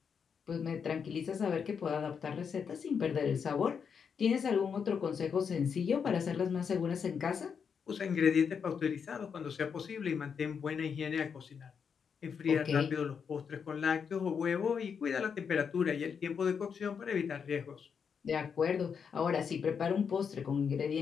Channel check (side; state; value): right; quieter; 6.6 dB